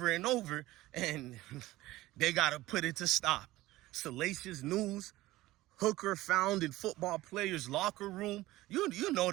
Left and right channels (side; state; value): left; quieter; 17.5 dB